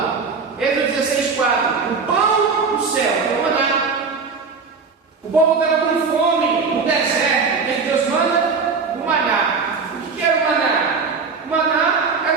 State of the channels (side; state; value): left; quieter; 5.0 dB